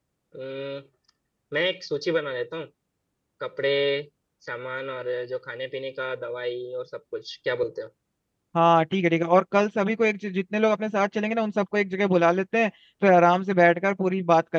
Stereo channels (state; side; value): identical; both; correlation 1.00